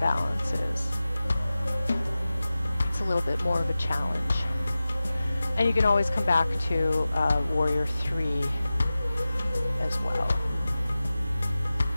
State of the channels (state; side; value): inverted; both; correlation -0.95